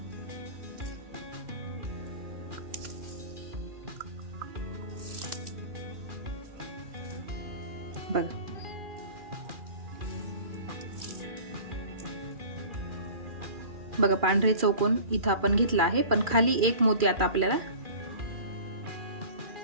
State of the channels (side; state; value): left; late; 2.4 ms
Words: बघा पांढरे चौकोन इथं आपण घेतला आहे, पण खाली एक मोती आता आपल्याला,